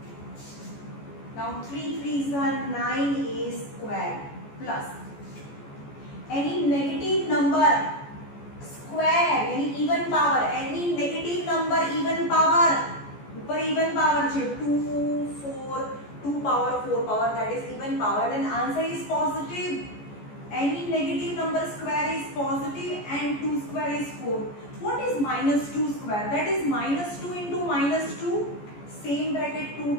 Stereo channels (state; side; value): late; right; 14 ms